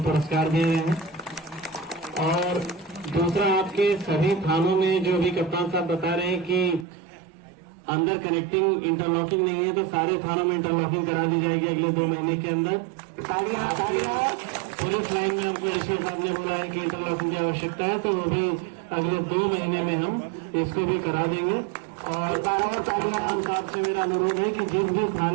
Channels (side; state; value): left; drops out; at 6.9 s